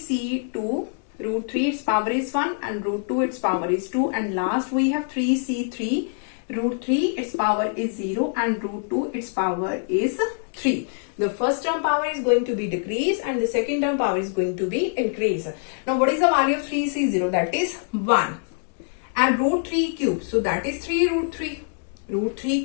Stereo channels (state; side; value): silent; right; 62 dB below the other